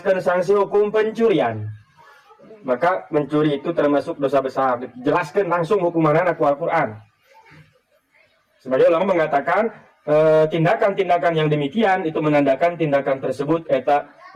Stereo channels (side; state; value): both; identical; correlation 1.00